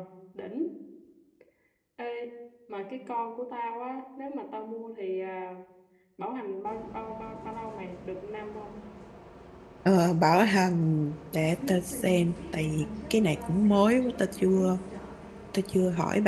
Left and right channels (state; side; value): identical; both; correlation 1.00